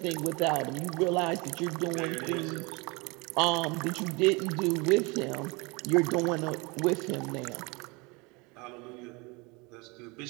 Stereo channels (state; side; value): quieter; left; 27.2 dB